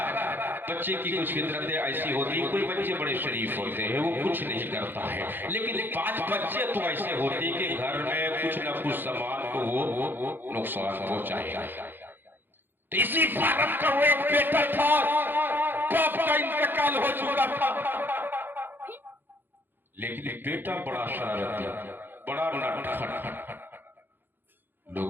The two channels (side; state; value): left; late; 0.096 ms